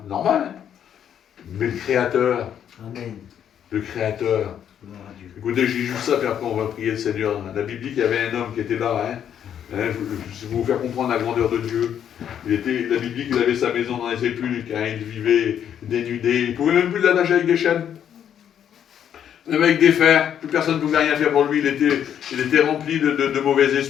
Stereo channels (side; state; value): right; quieter; 9.3 dB